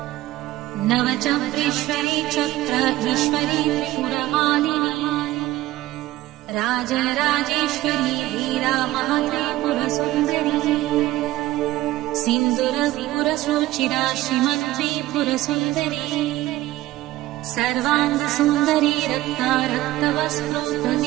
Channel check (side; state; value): left; quieter; 16.4 dB